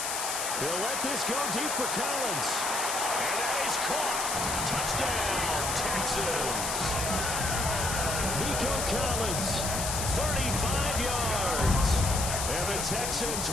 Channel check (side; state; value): left; noise; hiss, 2 dB below the sound